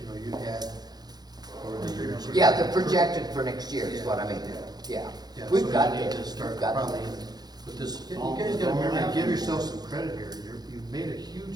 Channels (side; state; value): left; late; 0.19 ms